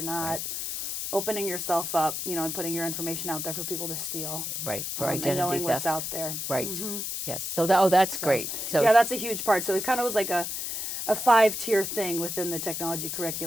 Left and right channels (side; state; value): left; noise; hiss, 4 dB below the sound